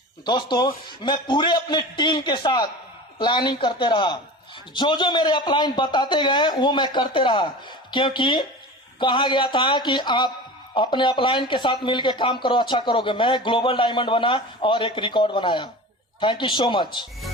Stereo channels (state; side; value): normal; both; correlation 0.34